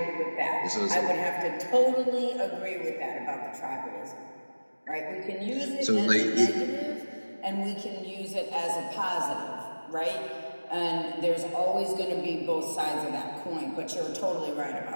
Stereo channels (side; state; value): both; inverted; correlation -1.00